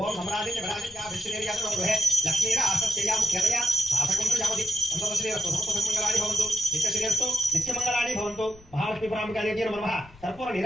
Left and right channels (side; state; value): left; noise; rumble, 23 dB below the sound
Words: ఓం సమరాజించ విరాజించ విష్ణుదేవ్యాతో గృహే లక్ష్మీర ఆసస్యయా ముఖ్యతయా శాసకుంత్ర యావతి సంతోషశ్రీరస్తు సమస్తమంగళాని భవంతు నిత్యశ్రీరస్తు నిత్యమంగళాని భవంతు. మహాలక్ష్మీ పరాంబికాదేవ్యై నమః. కర్పూర